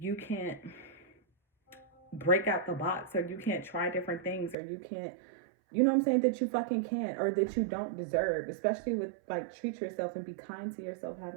can't break out the box, or you can't try different things, or you can't, you know what I'm saying, that you fucking can't, or that you don't deserve. Especially with like, treat yourself and be kind to yourself,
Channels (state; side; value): drops out; left; at 4.5 s